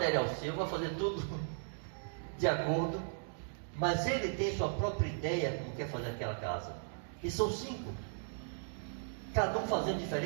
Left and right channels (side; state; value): left; silent; digital silence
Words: seu, vão fazer tudo de acordo, mas ele tem sua própria ideia como quer fazer aquela casa. E são 5, cada um fazendo